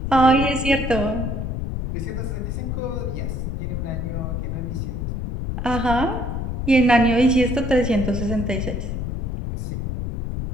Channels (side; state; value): left; noise; rumble, 3 dB below the sound